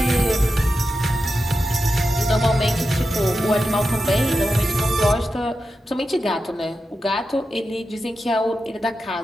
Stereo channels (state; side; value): normal; both; correlation 0.90